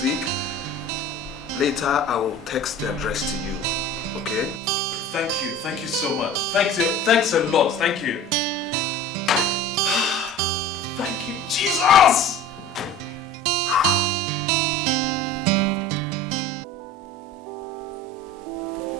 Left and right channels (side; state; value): both; normal; correlation 0.40